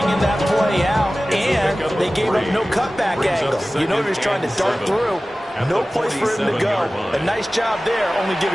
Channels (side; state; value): both; normal; correlation 0.97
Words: that play out, and they gave up no cutback angle. You know he was trying to dart through. No place for him to go. A nice job there, only